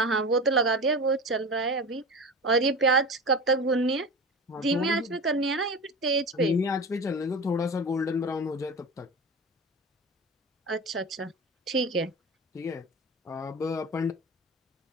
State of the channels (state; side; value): normal; both; correlation 0.30